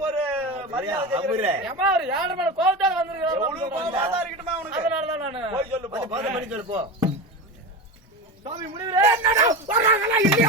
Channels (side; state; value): both; normal; correlation 0.24